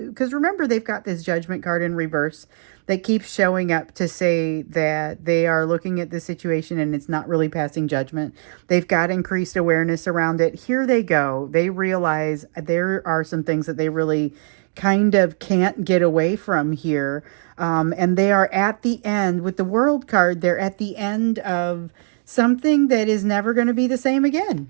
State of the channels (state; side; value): silent; left; digital silence